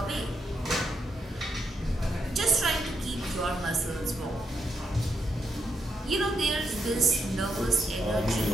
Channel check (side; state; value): both; normal; correlation 0.81